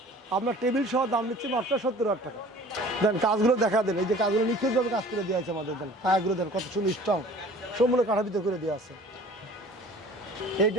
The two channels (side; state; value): both; normal; correlation 0.47